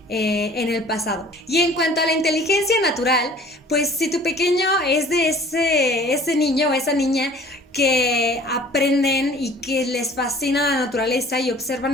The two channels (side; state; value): both; normal; correlation 0.50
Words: en el pasado. Y en cuanto a la inteligencia natural, pues si tu pequeño es de ese niño o esa niña que aprenden y que les fascina la naturaleza y